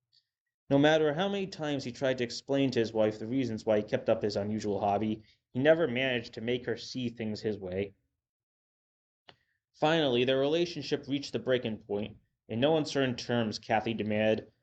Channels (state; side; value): identical; both; correlation 1.00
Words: No matter how many times he tried to explain to his wife the reasons why he kept up his unusual hobby, he never managed to make her see things his way. Finally, their relationship reached the breaking point. In no uncertain terms, Kathy demanded,